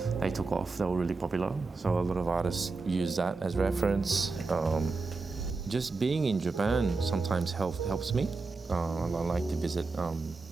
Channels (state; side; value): quieter; left; 3.9 dB